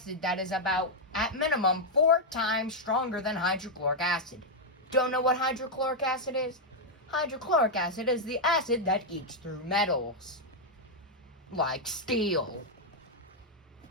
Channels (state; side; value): normal; both; correlation -0.01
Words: that is about, at minimum, 4 times stronger than hydrochloric acid. Don't know what hydrochloric acid is? Hydrochloric acid is the acid that eats through metals, like steel.